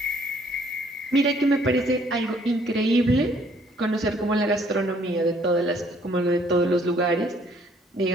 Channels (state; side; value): normal; both; correlation 0.62